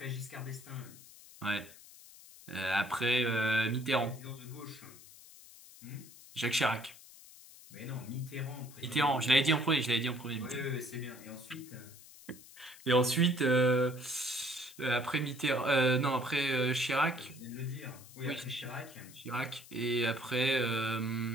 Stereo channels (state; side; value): noise; left; hiss, 20 dB below the sound